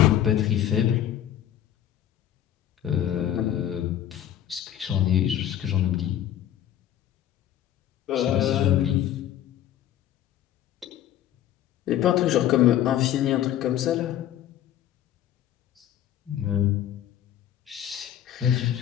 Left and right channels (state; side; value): quieter; right; 11.3 dB